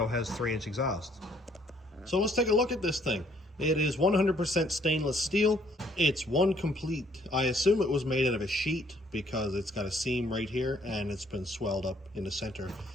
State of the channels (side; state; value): both; normal; correlation 0.64